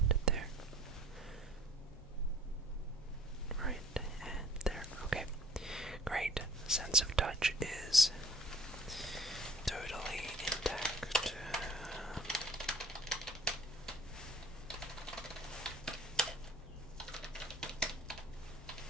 there. Right, and there. Okay. Great. Sense of touch is totally intact.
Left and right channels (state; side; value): normal; both; correlation 0.52